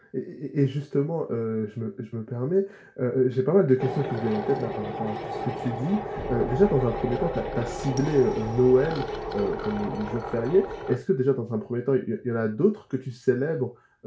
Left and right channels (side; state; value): both; identical; correlation 1.00